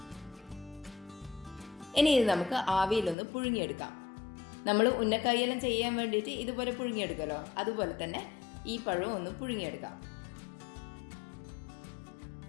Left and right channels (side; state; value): right; drops out; at 3.2 s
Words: ഇനി ഇത് നമുക്ക് ആവിയിലൊന്ന് പുഴുങ്ങിയെടുക്കാം. നമ്മൾ ഉന്നക്കായെല്ലാം ചെയ്യാൻ വേണ്ടിയിട്ട് ഇതുപോലെ പുഴുങ്ങിയെടുക്കുമല്ലോ, അതുപോലെ തന്നെ ഈ പഴം ഒന്ന് പുഴുങ്ങിയെടുക്കാം.